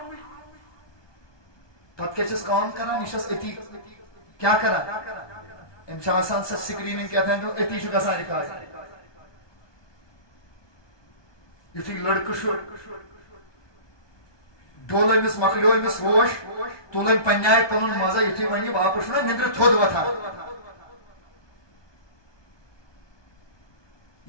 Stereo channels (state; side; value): late; right; 1.2 ms